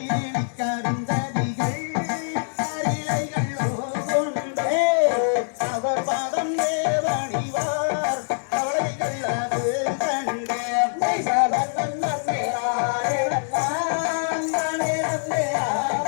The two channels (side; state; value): right; silent; 62 dB below the other